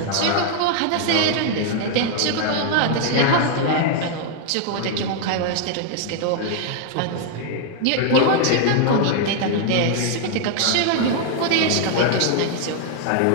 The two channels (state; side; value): different; both; correlation 0.00